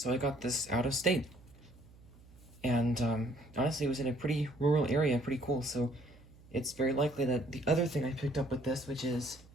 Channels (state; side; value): noise; right; hum, 24 dB below the sound